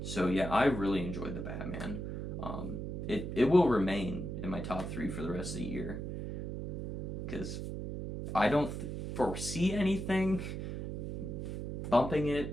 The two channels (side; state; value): right; noise; hum, 5 dB below the sound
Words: So yeah, I really enjoyed The Batman. It will remain in my top 3 for the rest of the year, because I don't foresee anything bumping